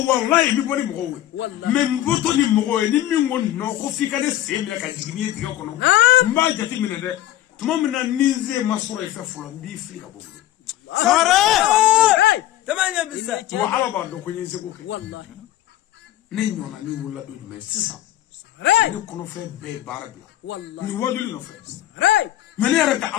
wallahi mi boni mo we me mboto ni mo we ni mi ngon no ko fika de semle ka jigini diga kono mba jati mine de tuma mina nize masoro ife fulo bi frika bobu sangare tamanya bisa wa ala ba do ko nyi se ko wallahi نينونا ني ولا دو جمع سيسا ني كونو في بي باربلا والله ني وادولي نو في راي من يرك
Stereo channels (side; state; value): right; quieter; 13.7 dB